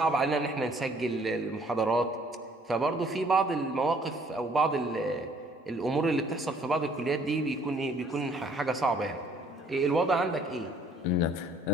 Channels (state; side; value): normal; both; correlation 0.60